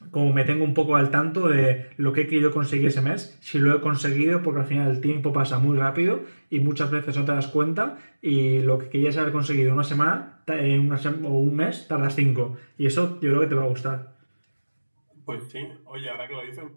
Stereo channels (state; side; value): inverted; both; correlation -1.00